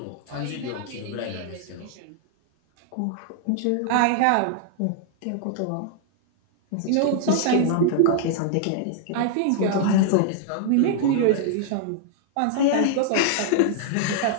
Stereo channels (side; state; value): both; different; correlation -0.01